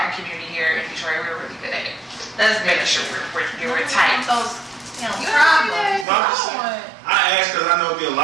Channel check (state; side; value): drops out; left; at 6.1 s